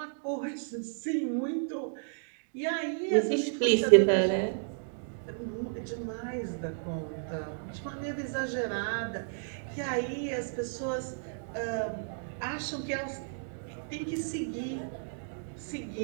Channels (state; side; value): silent; left; digital silence